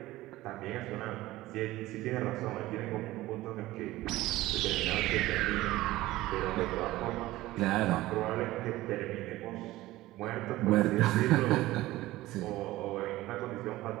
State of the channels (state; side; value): quieter; left; 17.2 dB